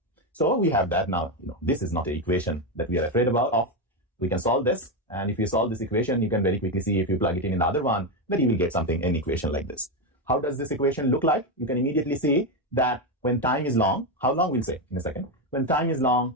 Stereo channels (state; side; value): normal; both; correlation 0.10